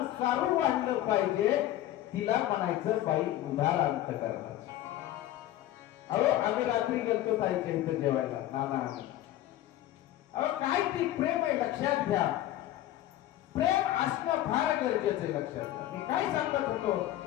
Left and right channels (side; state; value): right; quieter; 13.8 dB